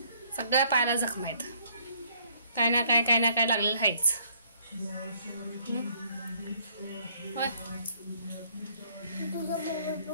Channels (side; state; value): both; inverted; correlation -0.64